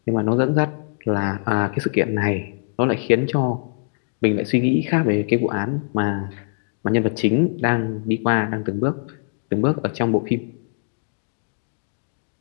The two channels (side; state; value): right; silent; digital silence